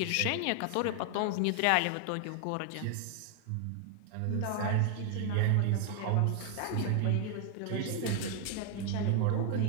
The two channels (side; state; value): both; different; correlation 0.00